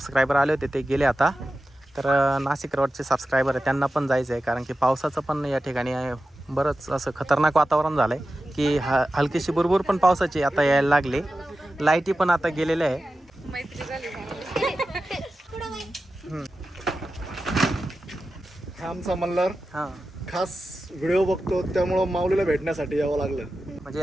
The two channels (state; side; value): normal; both; correlation 0.93